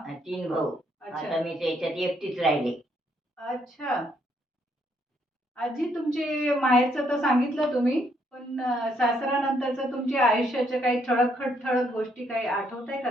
3 भाऊ. अच्छा आता मी त्याच्यात एकटीच राहिले. अच्छा. आजी तुमचे माहेरचं तर सांगितलं तुम्ही, पण सासरानंतरचं तुमच्या आयुष्याच्या काही ठळक गोष्टी काही आठवताय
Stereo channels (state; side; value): normal; both; correlation 0.72